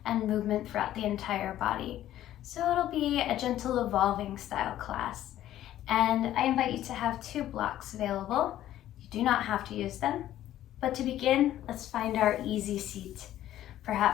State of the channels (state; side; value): quieter; right; 12.8 dB